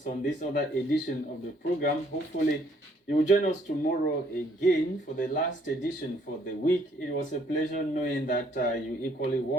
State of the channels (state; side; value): normal; both; correlation 0.65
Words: on this other edition of the program. Hopefully, you will join us tomorrow again for the last edition for the week. It was a pleasure knowing that you equally